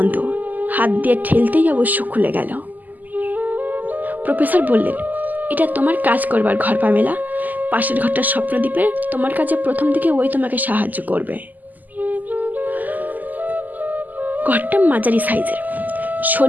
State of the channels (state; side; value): late; left; 0.083 ms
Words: হাত দিয়ে ঠেলতেই অবশ্য খুলে গেল। প্রফেসর বললেন, এটা তোমার কাজ করবার ঘর পামেলা। পাশের ঘরটা স্বপ্নদ্বীপের, তোমার কাছে প্রথম দিকে ওই তোমাকে সাহায্য করবে। ঘরটা মাঝারি সাইজের,